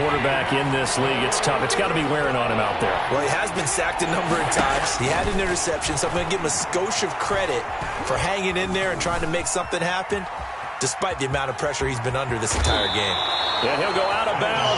in this league, it's tough. It's got to be wearing on him out there. Well, he has been sacked a number of times. He had an interception, so I'm going to give him a skosh of credit for hanging in there and trying to make something happen, despite the amount of pressure he's been under this entire game. And he'll go out of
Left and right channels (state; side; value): identical; both; correlation 1.00